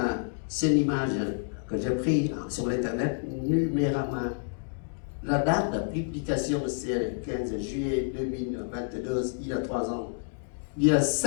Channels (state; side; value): silent; right; digital silence